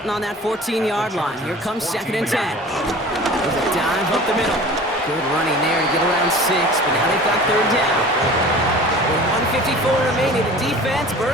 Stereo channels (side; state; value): both; normal; correlation 0.42